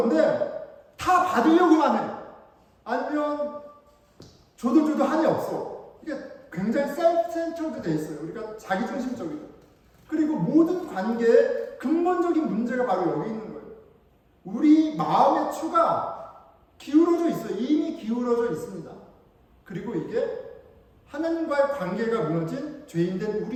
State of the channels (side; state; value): both; identical; correlation 1.00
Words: 다 받으려고만 해. 아니면 줘도 한이 없어. 이게 굉장히 셀프-센터드 돼 있어요. 우리가 자기중심적이죠. 그리고 모든 관계에 근본적인 문제가 바로 여기 있는 거예요. 우리 마음의 추가 기울어져 있어요. 이미 기울어져 있습니다. 그리고 이게 하나님과의 관계가 무너진 죄인된